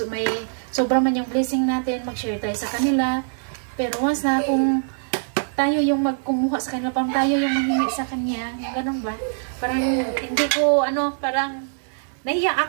may sobra man yung blessing natin, mag-share tayo sa kanila. Pero once na kung tayo yung magkumuha sa kanila, parang tayo yung manghingi sa kanya, yung ganun ba? Parang hindi ko, parang nahiya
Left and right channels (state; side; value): silent; left; digital silence